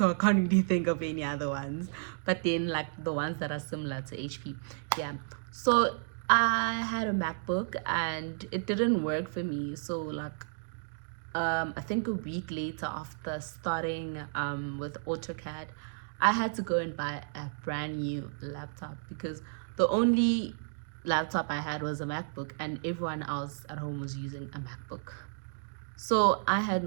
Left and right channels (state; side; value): silent; left; digital silence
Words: I can't really think of any other ones. But then, like the ones that are similar to HP, yeah. So I had a MacBook, and it didn't work for me. So like, I think a week later after starting with AutoCAD, I had to go and buy a brand new laptop because the only laptop I had was a MacBook, and everyone else at home was using a MacBook. So I had